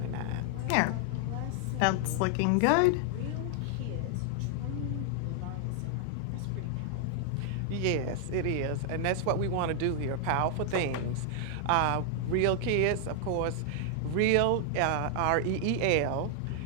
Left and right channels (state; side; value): different; both; correlation 0.00